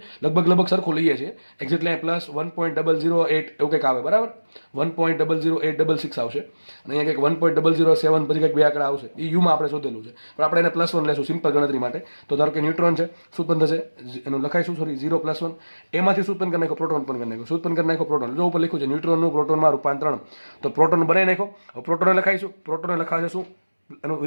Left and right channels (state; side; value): inverted; both; correlation -1.00